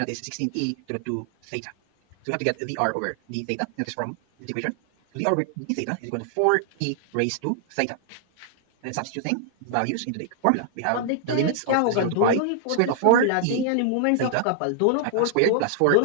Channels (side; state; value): both; different; correlation 0.00